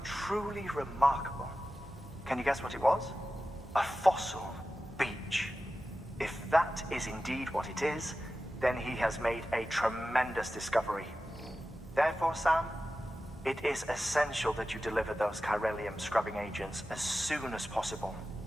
truly remarkable. Can you guess what it was? A fossil beach. If that is indeed what it is, then he has made a tremendous discovery. Therefore, Sam, it is essential that you deliver those chiralium scrubbing agents as soon as possible.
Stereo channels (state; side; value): normal; both; correlation 0.94